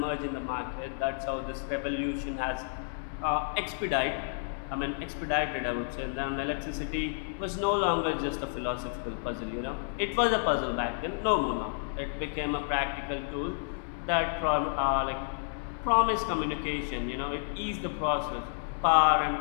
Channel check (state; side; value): silent; right; digital silence